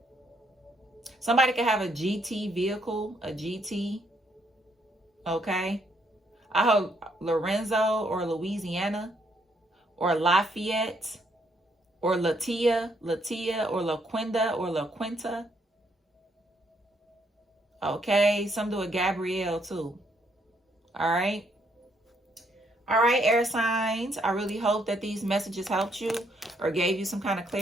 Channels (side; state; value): both; normal; correlation 0.72